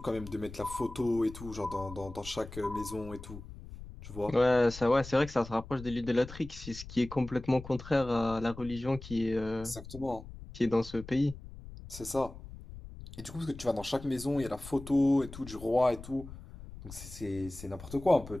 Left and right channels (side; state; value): left; noise; rumble, 14 dB below the sound